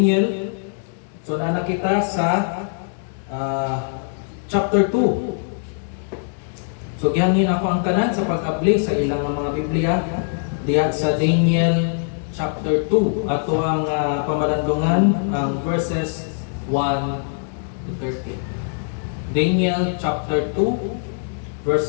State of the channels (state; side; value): silent; right; digital silence